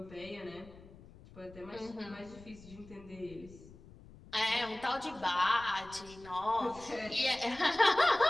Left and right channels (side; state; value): left; noise; rumble, 20 dB below the sound